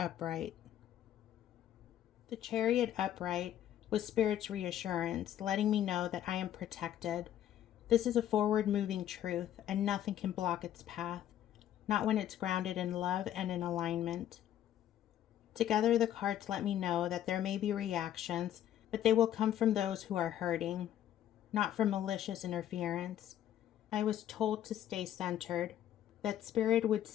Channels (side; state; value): right; quieter; 11.3 dB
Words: The Chariot upright was Spirit's reassurance, letting me know that I am protected. This is a forward-moving truth, and nothing can block its path, not when it's grounded in love and in alignment. Together, the cards let me know that there may be reactions, but they will come from those who are hurting, not from malicious interference. I was told to stay centered, that Spirit would